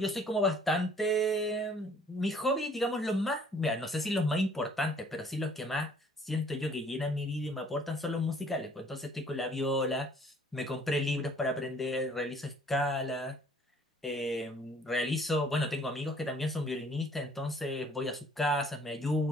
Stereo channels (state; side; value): normal; both; correlation 0.58